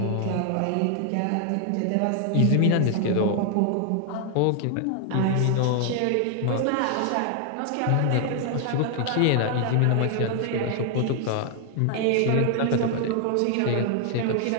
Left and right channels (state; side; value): different; both; correlation 0.00